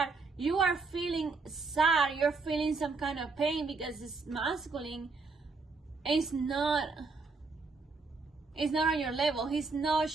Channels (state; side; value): quieter; left; 4.2 dB